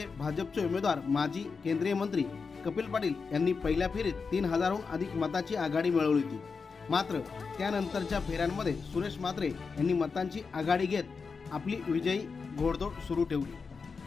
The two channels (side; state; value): right; quieter; 5.0 dB